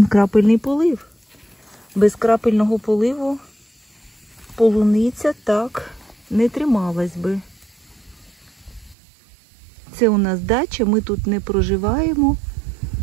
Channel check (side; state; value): left; drops out; at 9.0 s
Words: крапельний полив. Без крапельного поливу полуниця так не трималась би. Це у нас дача, ми тут не проживаємо